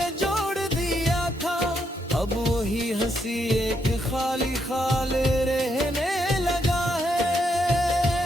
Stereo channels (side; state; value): both; normal; correlation 0.78